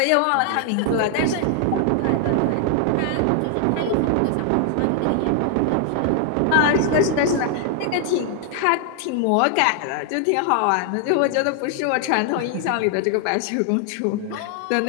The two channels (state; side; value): different; both; correlation 0.00